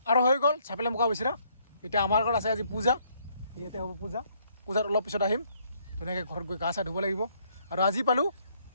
আৰু হৈ গ'ল চাপেল লেম্পকা বিচৰা এতিয়া আমাৰ ঘৰত আছে আজি পূজা ইয়াতে হ'ব পূজাত অলপ পিছত আহিম ধুনীয়াকৈ ঘৰত গৈ গা চা ধুব লাগিব আৰু আজি পালোঁ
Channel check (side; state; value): both; inverted; correlation -0.68